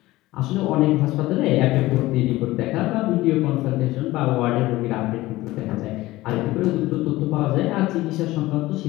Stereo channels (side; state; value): right; quieter; 18.1 dB